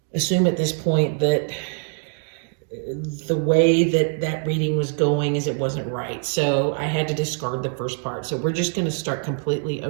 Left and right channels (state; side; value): silent; left; 58 dB below the other